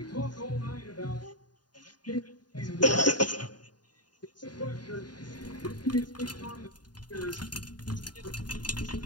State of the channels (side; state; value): right; late; 0.70 ms